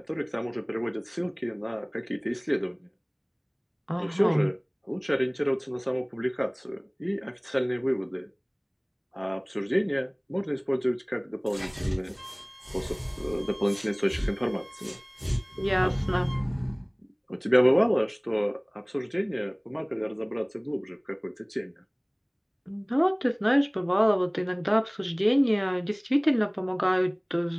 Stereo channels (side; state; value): both; identical; correlation 1.00